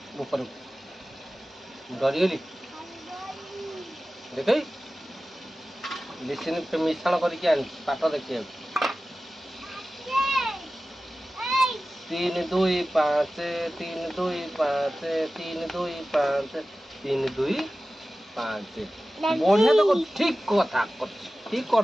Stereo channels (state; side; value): normal; both; correlation 0.95